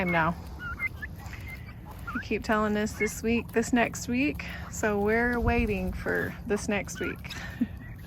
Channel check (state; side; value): identical; both; correlation 1.00